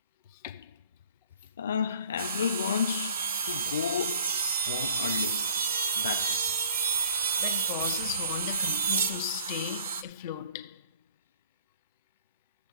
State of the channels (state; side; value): inverted; both; correlation -0.52